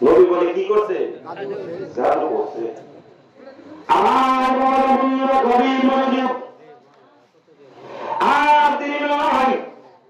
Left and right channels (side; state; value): both; identical; correlation 1.00